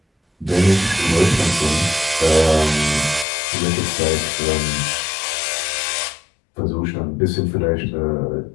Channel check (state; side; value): drops out; right; at 3.2 s